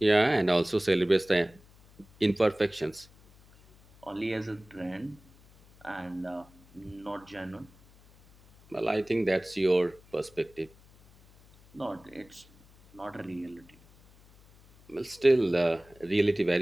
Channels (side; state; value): left; noise; hum, 27 dB below the sound